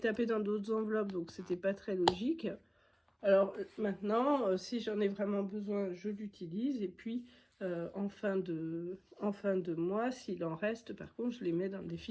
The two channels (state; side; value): identical; both; correlation 1.00